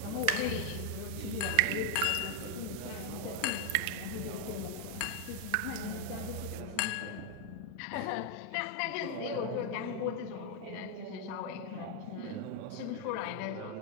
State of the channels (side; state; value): both; different; correlation 0.01